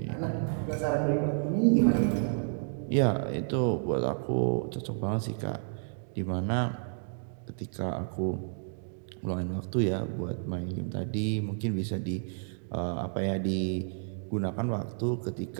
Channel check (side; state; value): left; silent; digital silence